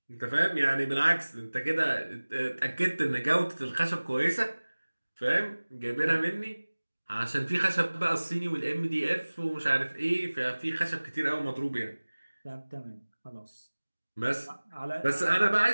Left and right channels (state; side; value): inverted; both; correlation -1.00